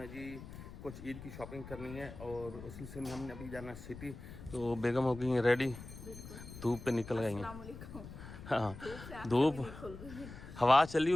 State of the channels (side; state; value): left; noise; rumble, 13 dB below the sound